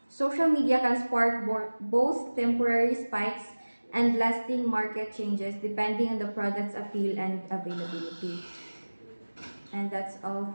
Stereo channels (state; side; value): inverted; both; correlation -1.00